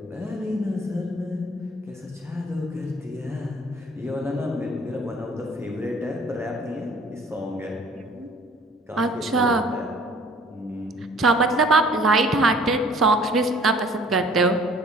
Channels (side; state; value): both; normal; correlation 0.53